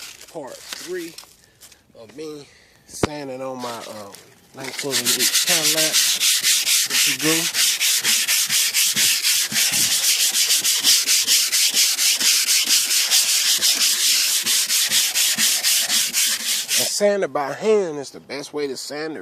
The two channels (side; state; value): both; identical; correlation 1.00